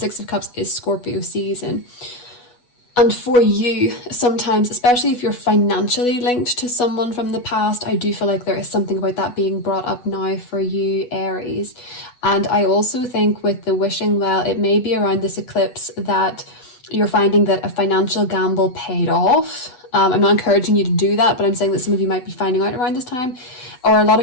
of Cups is Scorpio season. And for you, sometimes, especially if you're financially linked to someone from the past, I do feel like there is something about that being brought up now for you, Aries. And I also think with the wishing well, it may be around this eclipse that you're finding that a financial gamble paid off. I'm not encouraging you to do that, but I'm saying that some of you might be finding out around this time, or a lot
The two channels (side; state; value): right; late; 8.1 ms